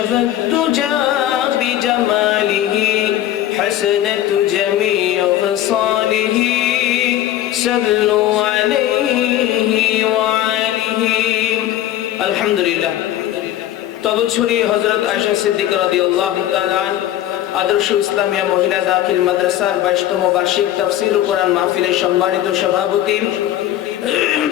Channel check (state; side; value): quieter; right; 12.6 dB